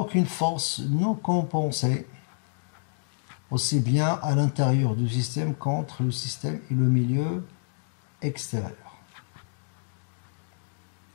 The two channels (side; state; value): right; silent; digital silence